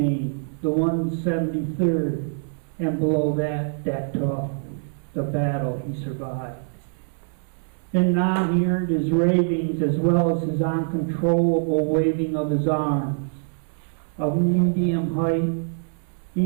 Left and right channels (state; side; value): silent; left; 61 dB below the other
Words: the 173rd, and below that tough, the battle he survived. And now he earned his ravings as well as his uncontrollable waving of his arms. Of medium height,